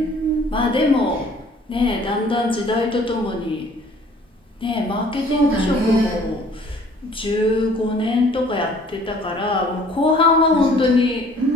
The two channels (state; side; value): normal; both; correlation 0.55